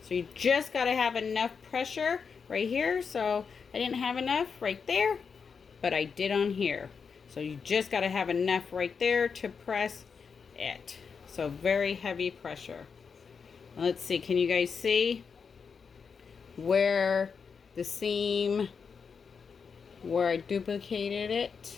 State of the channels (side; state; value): right; quieter; 5.8 dB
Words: So you just got to have enough pressure right here. So I didn't have enough right there, but I did on here. So you just got to have enough right there to press it. So very heavy pressure. Let's see, can you guys see where the seam, where I duplicated